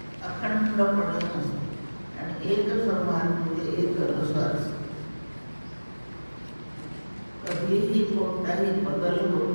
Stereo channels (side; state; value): both; inverted; correlation -1.00